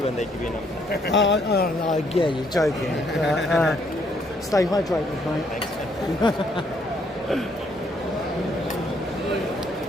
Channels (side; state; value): both; normal; correlation 0.69